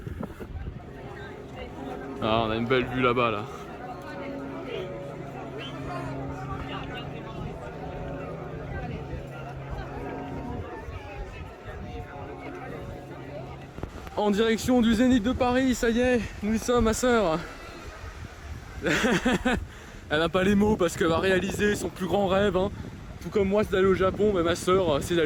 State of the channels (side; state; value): both; identical; correlation 1.00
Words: Ah, on a une belle vue là-bas là. En direction du Zénith de Paris, ça y est, nous y sommes, ma soeur. Elle n'a pas les mots parce qu'elle va réaliser son plus grand rêve, hein. Tout comme moi c'est d'aller au Japon, mais ma soeur c'est